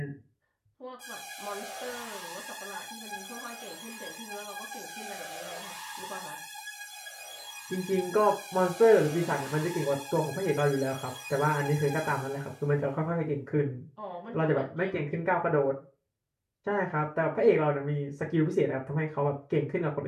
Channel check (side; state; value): both; identical; correlation 1.00